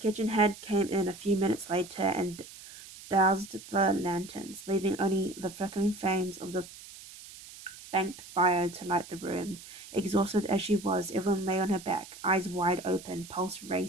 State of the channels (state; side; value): noise; right; hiss, 16 dB below the sound